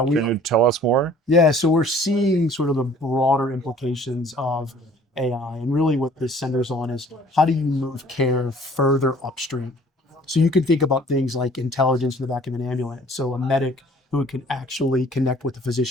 you tell us more? Yeah. So we're seeing sort of the broader implications of AI. And really what this centers on is how do you move care further upstream? So you can think about things like intelligence in the back of an ambulance. So a medic who can actually connect with the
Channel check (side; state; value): both; normal; correlation 0.53